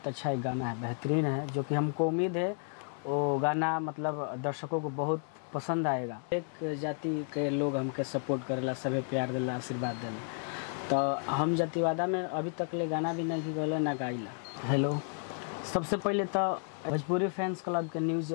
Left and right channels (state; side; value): silent; right; 56 dB below the other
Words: अच्छा एक गाना है, बेहतरीन है, जो कि हमको उम्मीद है वो गाना मतलब दर्शकों को बहुत पसंद आएगा। एक जाति के लोग हमके सपोर्ट करेला, सभी प्यार देला, आशीर्वाद देला, तो हम जातिवादा में अभी तक ले गाना भी नहीं गले ना गाइला। हेलो, सबसे पहले तो भोजपुरी फैंस क्लब के न्यूज़